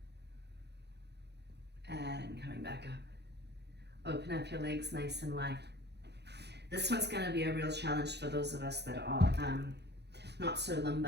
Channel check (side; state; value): left; late; 0.49 ms